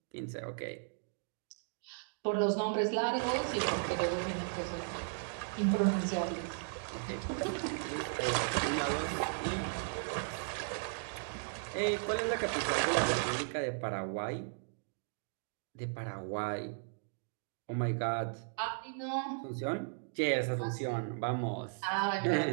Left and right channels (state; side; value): silent; left; digital silence